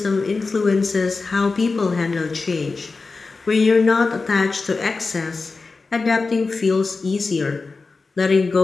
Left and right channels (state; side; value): quieter; right; 4.0 dB